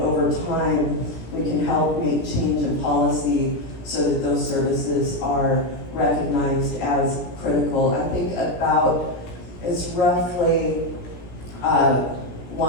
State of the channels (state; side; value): late; right; 17 ms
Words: time, we can help make change in policy so that those services are recognized as critical. I think it's roughly